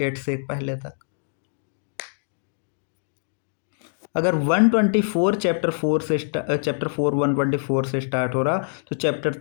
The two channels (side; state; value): right; silent; digital silence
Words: से पहले तक। अगर 124 चैप्टर 4 से चैप्टर 4 124 से स्टार्ट हो रहा तो चैप्टर